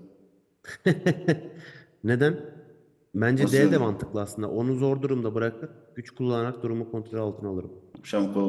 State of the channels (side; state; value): both; identical; correlation 1.00